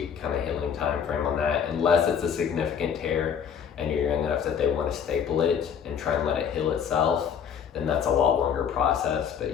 kind of healing time frame on that, unless it's a significant tear and you're young enough that they want to staple it and try and let it heal itself, then that's a lot longer process. But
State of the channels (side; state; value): right; quieter; 7.7 dB